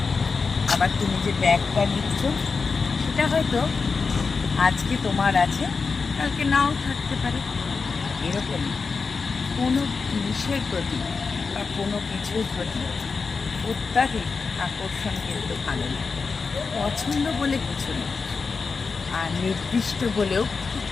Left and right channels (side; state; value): right; quieter; 4.8 dB